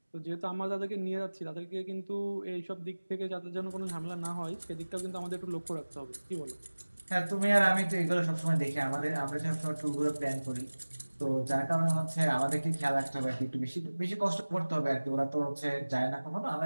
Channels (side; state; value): both; inverted; correlation -1.00